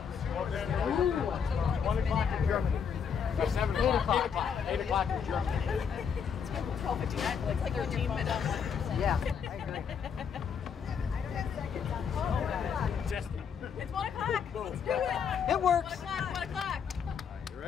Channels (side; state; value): right; quieter; 7.0 dB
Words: Ooh. 1 o'clock in Germany. No, 7 o'clock. 8 o'clock in Germany. It's 12:59, like 13 minutes. Yeah, I agree. It's 1 o'clock. Let's do it. It works. 1 o'clock. 1 o'clock. You